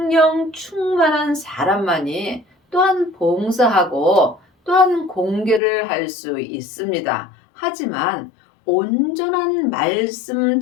충만한 사람만이 또한 봉사하고 또한 공개를 할 수 있습니다. 하지만 온전한 말씀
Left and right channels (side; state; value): right; drops out; at 5.6 s